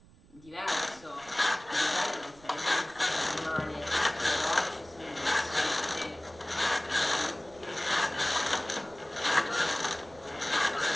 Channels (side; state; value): right; noise; rumble, 24 dB below the sound